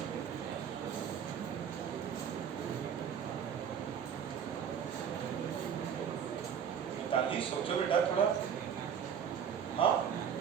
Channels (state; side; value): quieter; left; 8.0 dB